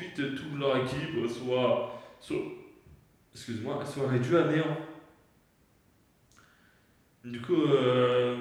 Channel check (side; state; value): both; identical; correlation 1.00